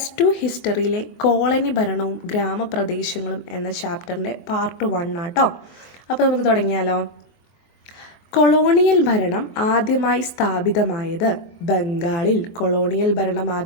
ഹിസ്റ്ററിയിലെ കോളനി ഭരണവും ഗ്രാമപ്രദേശങ്ങളും എന്ന ചാപ്റ്ററിൻ്റെ പാർട്ട് 1 ആട്ടോ. അപ്പോൾ നമുക്ക് തുടങ്ങിയാലോ. കൊളോണിയൽ ഭരണം ആദ്യമായി സ്ഥാപിതമായത്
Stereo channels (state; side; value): late; right; 24 ms